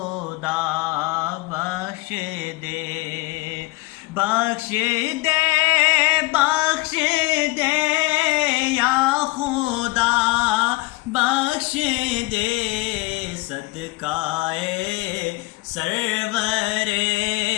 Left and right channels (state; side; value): quieter; right; 22.3 dB